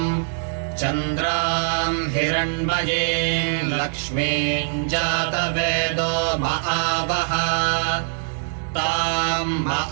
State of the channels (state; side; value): silent; left; digital silence